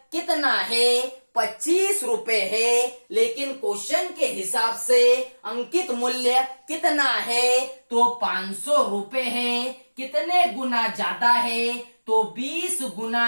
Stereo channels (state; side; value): inverted; both; correlation -1.00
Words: कितना है? 25 रुपए है। लेकिन क्वेश्चन के हिसाब से अंकित मूल्य कितना है? तो 500 रुपए है। कितने गुना ज्यादा है? तो 20